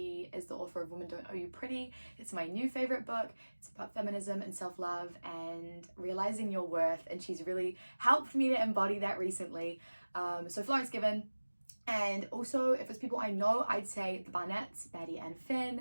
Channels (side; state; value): both; inverted; correlation -1.00